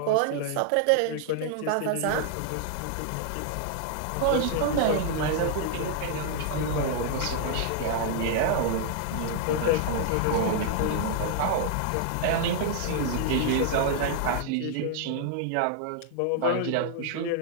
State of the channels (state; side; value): different; both; correlation -0.01